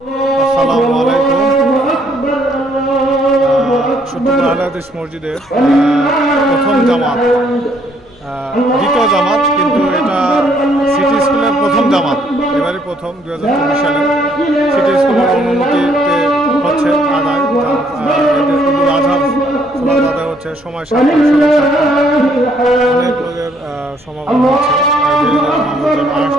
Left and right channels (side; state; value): left; noise; hum, 29 dB below the sound